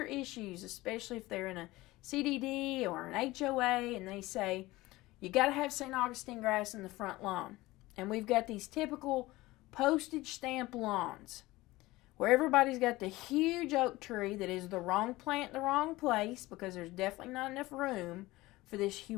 issues, especially if they're in a CDD or an HOA, and they say, you got to have St. Augustine grass in the front lawn. And we've got these typical postage stamp lawns where everybody's got the huge oak tree that is the wrong plant in the wrong place because there's definitely not enough room for this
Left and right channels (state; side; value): quieter; right; 19.2 dB